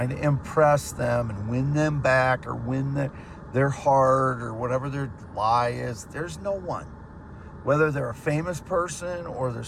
to impress them and win them back, or win their heart, or whatever their lie is. There's no one. Whether they're a famous person or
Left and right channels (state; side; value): identical; both; correlation 1.00